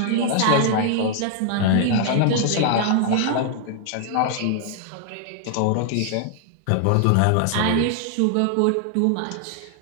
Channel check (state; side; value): different; both; correlation 0.00